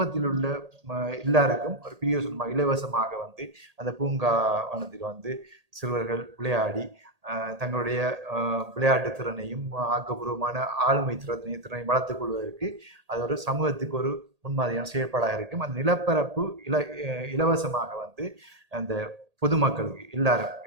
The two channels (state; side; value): late; left; 1.8 ms